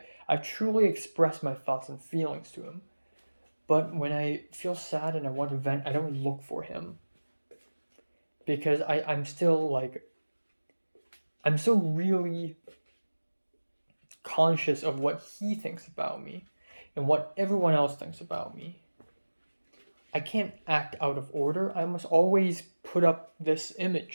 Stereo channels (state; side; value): inverted; both; correlation -1.00